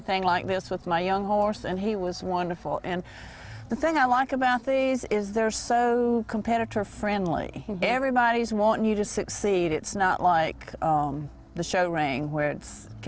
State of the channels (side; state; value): both; identical; correlation 1.00